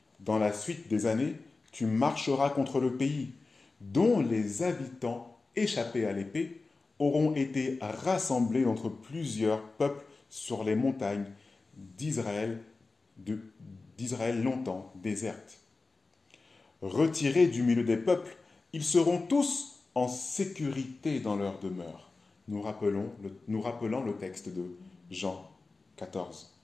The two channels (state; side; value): quieter; right; 3.7 dB